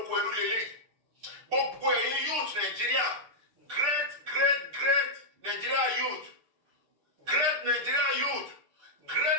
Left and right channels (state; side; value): late; left; 6.8 ms